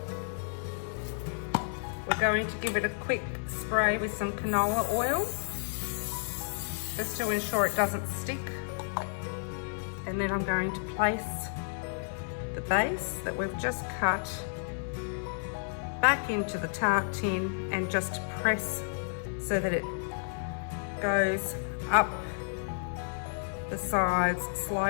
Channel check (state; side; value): silent; right; digital silence